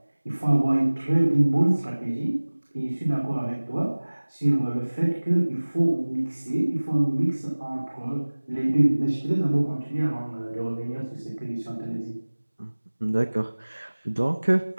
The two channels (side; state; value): both; inverted; correlation -1.00